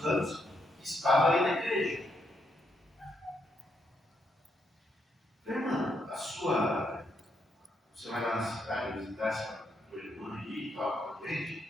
anos que estava ali na igreja. Irmã, você vai lá na cidade visitar essa tua irmã aí e tal, com a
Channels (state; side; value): normal; both; correlation 0.78